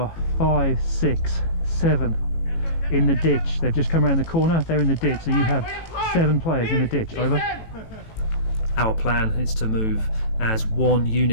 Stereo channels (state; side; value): late; right; 18 ms